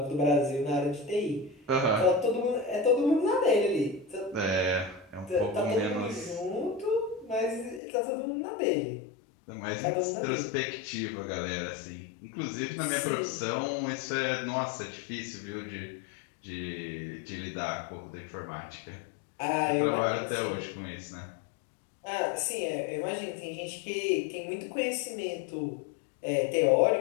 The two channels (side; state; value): right; drops out; at 7.8 s